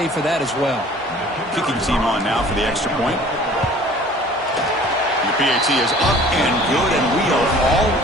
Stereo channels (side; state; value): both; normal; correlation 0.49